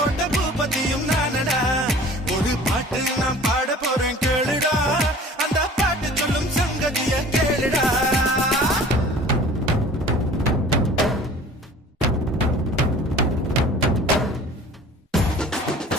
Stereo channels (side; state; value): both; normal; correlation 0.46